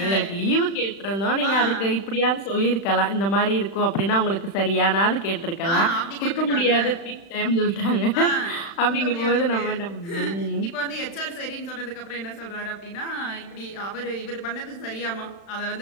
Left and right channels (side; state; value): right; late; 35 ms